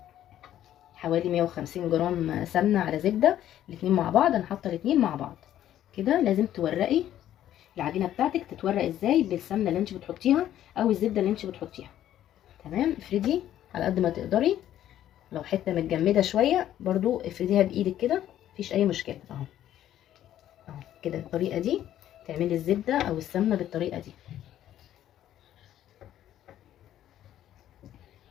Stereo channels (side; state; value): right; quieter; 11.9 dB